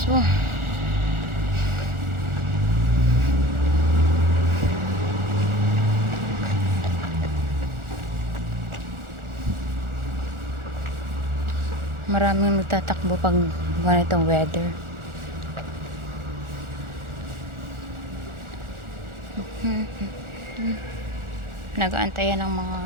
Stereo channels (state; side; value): late; left; 1.4 ms